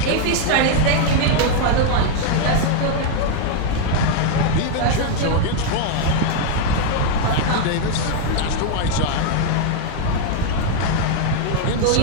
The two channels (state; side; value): different; both; correlation 0.00